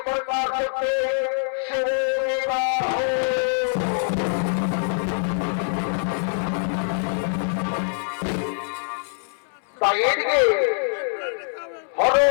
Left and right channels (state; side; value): silent; right; 61 dB below the other